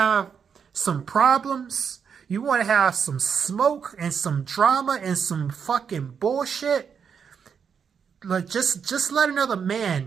some problems? You want to have some smoke and some drama and some fucking bullshit? Like, just let another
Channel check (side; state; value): left; quieter; 6.9 dB